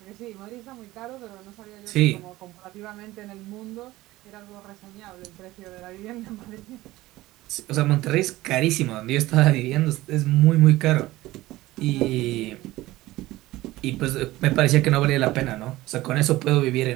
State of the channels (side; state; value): left; quieter; 17.7 dB